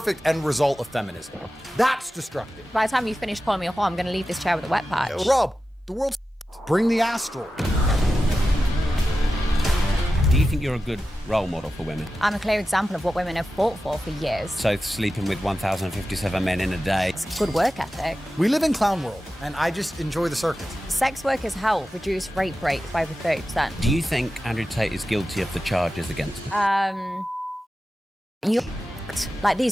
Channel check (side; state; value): both; normal; correlation 0.93